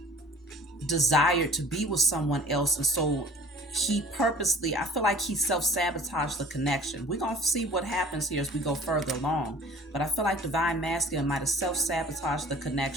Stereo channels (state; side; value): normal; both; correlation 0.48